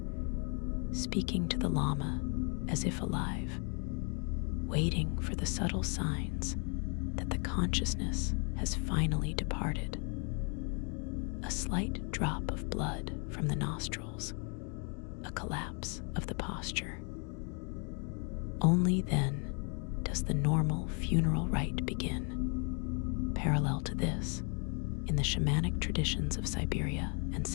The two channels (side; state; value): right; quieter; 37.3 dB